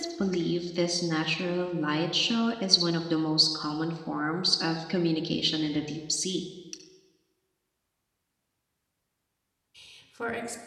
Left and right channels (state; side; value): identical; both; correlation 1.00